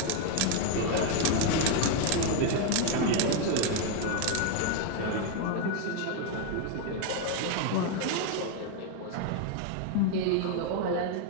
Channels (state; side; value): different; both; correlation 0.01